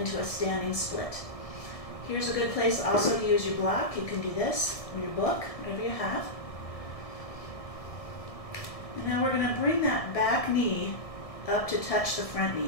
a standing split. Here's a good place also to use your block. You can do this, or your book, whatever you have. And now we're going to bring that back knee up to touch the front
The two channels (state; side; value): late; right; 1.7 ms